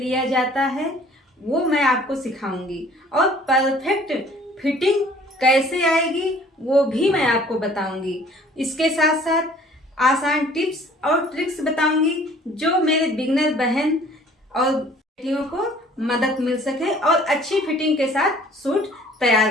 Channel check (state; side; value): normal; both; correlation 0.54